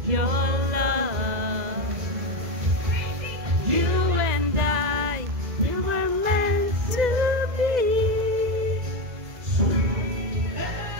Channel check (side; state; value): left; late; 2.0 ms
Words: your love. You and I, we were meant to be.